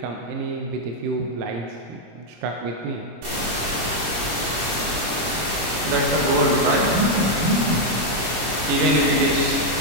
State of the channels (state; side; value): late; left; 25 ms